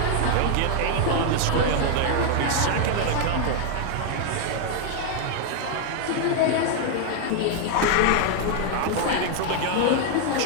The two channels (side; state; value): both; different; correlation 0.00